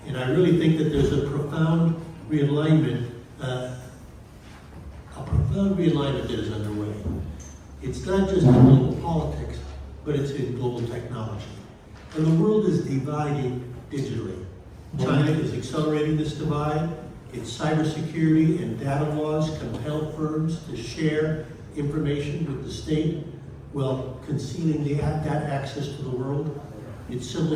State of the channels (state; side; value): identical; both; correlation 1.00